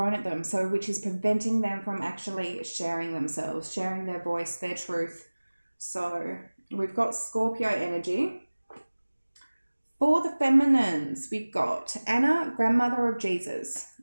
at them, so which is preventing them from actually sharing themselves, sharing their voice, their truth. So we've got Scorpio energy. For the feminines, we've got Anna, grandmother of Jesus.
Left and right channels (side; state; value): both; inverted; correlation -1.00